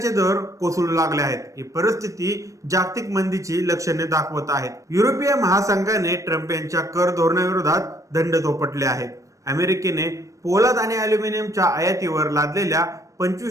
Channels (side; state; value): left; late; 0.16 ms